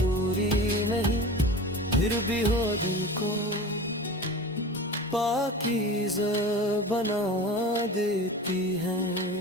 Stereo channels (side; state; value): both; normal; correlation 0.34